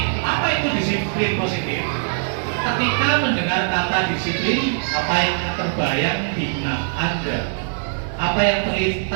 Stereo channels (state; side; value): silent; left; 57 dB below the other